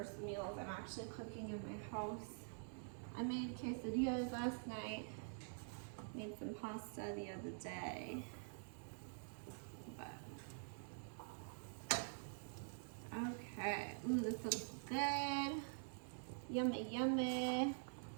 meals I'm actually cooking in my house. I made quesadillas last night. Made some pasta the other day. But okay. Ooh, this looks good. Yummy, yummy.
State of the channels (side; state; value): left; silent; digital silence